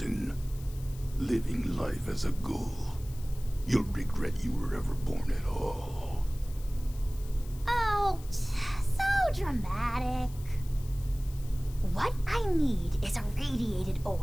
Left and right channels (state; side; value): noise; left; hiss, 20 dB below the sound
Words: Living life as a ghoul. You'll regret you were ever born at all. Oh, so dramatic. What I need is a radiated